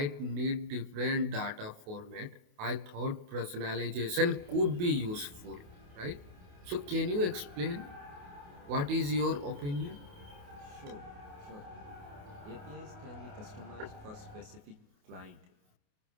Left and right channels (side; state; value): left; late; 28 ms